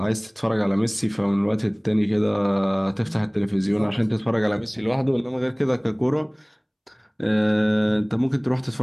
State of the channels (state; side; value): identical; both; correlation 1.00